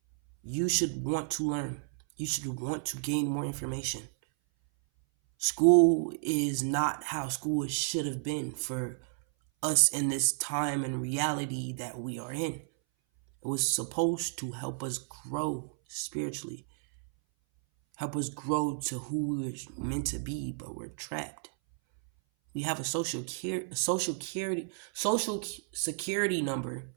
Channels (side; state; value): left; silent; 57 dB below the other